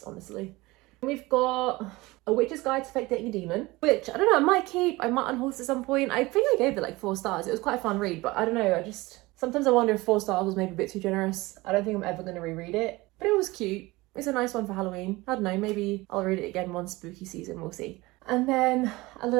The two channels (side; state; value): left; quieter; 21.2 dB